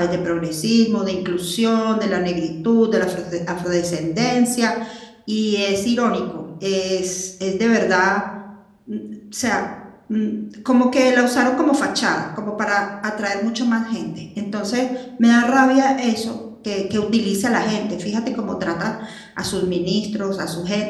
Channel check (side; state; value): both; identical; correlation 1.00